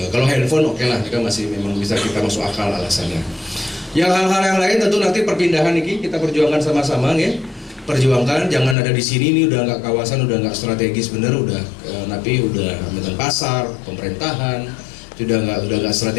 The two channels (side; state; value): right; drops out; at 8.8 s